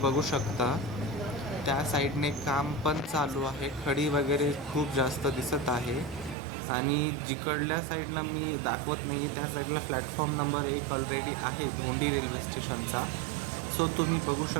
शकता त्या साईडने काम पण चालू आहे. खडी वगैरे खूप जास्त दिसत आहे आणि जिकडल्या साईडनं मी दाखवत नाही आहे त्या साईडला प्लॅटफॉर्म नंबर 1 ऑलरेडी आहे धोंडी रेल्वे स्टेशनचा. सो तुम्ही बघू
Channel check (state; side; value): drops out; left; at 6.4 s